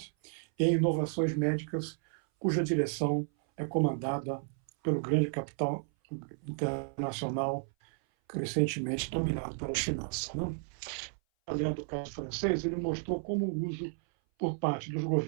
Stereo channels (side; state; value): left; silent; 56 dB below the other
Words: e em inovações médicas cuja direção é comandada pelo grande capital internacional crescentemente dominado pela finança. Né? Além do caso francês, ele mostrou como o uso por parte dos